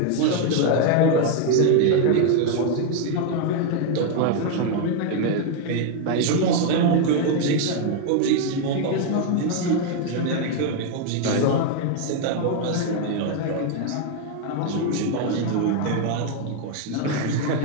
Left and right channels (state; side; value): different; both; correlation 0.01